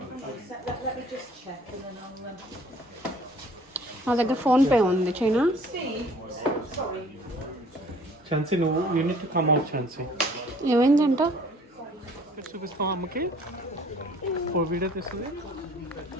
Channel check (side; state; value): both; normal; correlation 0.54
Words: Let me just check and then I'll. నా దగ్గర phone pay ఉంది China Steve, sorry. Chancy, no, you need to come out, Chancy. ఏమైందంట చూపిస్తాం అమ్మకి for video తీస్తుంది